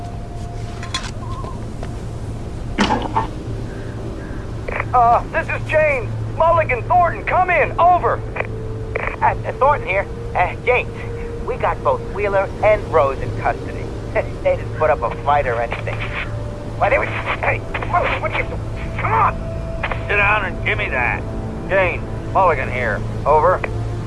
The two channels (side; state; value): both; identical; correlation 1.00